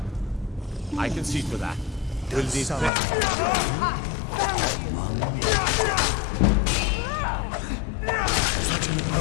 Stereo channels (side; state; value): right; drops out; at 2.9 s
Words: I can see to that. Will this such an